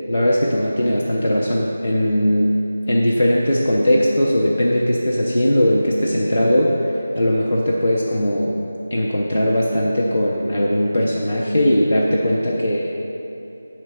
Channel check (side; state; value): both; inverted; correlation -0.95